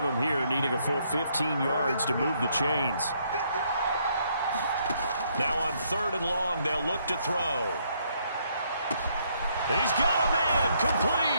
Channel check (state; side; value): inverted; both; correlation -0.71